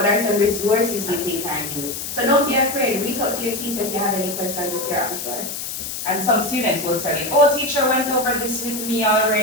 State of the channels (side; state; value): left; noise; hiss, 6 dB below the sound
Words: are some resources you think I need? So don't be afraid. Reach out to your teacher if you have any questions if you're unsure. And some students will tell you, oh, teacher went over this with me